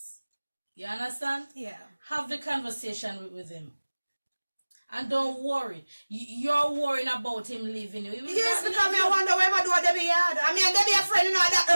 You understand? Yeah. Have the conversation with him. And don't worry. You're worrying about him leaving you. Yes, because me I wonder where I do a Debbie yard. I mean, Debbie a friend, you know, that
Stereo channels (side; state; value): both; inverted; correlation -1.00